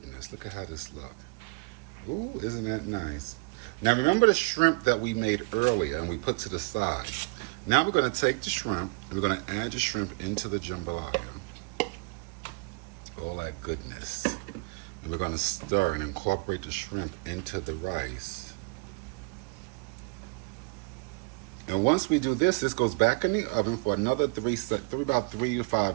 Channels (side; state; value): left; quieter; 31.1 dB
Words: Look at how this looks. Ooh, isn't that nice? Now, remember the shrimp that we made earlier and we put to the side. Now, we're going to take the shrimp and we're going to add the shrimp into the jambalaya. All that goodness. And we're going to stir and incorporate the shrimp into the rice. And once we do this, this goes back in the oven for another about 3 to